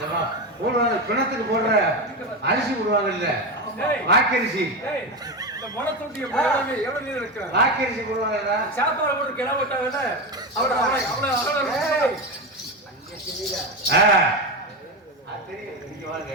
போடுவாங்க பிணத்துக்கு போடுற அரிசி போடுவாங்க இல்ல, வாக்கரிசி. வாக்கரிசி போடுவாங்க. சாப்பாடு போட்டு கிளம்பிட்டாங்க.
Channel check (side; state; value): both; normal; correlation 0.16